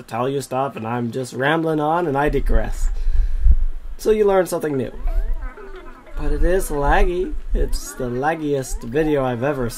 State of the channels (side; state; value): both; identical; correlation 1.00